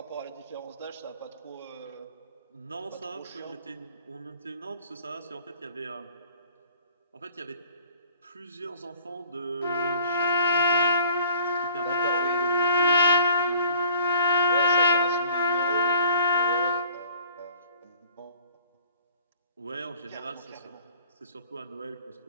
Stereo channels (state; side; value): inverted; both; correlation -0.52